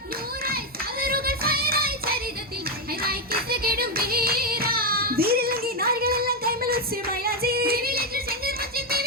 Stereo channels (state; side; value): normal; both; correlation 0.05